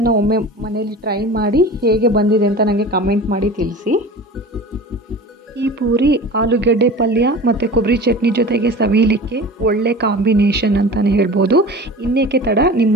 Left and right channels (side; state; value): both; normal; correlation 0.36